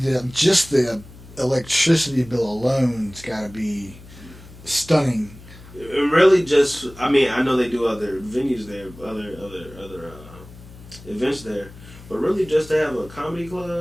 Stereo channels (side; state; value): left; noise; hum, 19 dB below the sound